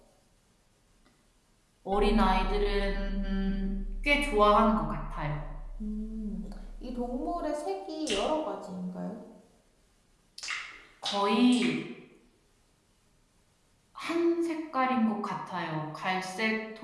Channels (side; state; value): both; identical; correlation 1.00